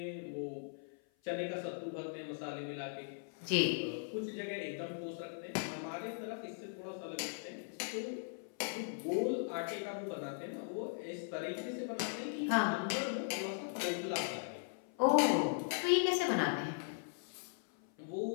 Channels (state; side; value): silent; right; 52 dB below the other